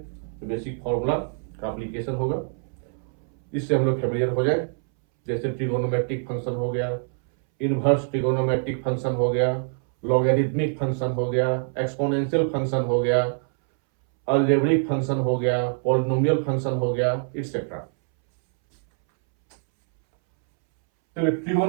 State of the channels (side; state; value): left; silent; 62 dB below the other